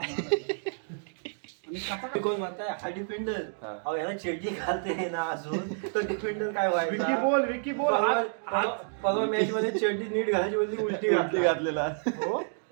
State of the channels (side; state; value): left; silent; digital silence